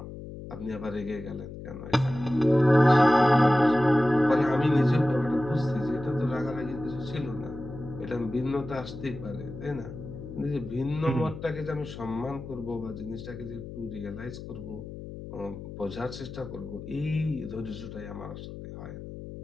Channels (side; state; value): left; noise; hum, 11 dB below the sound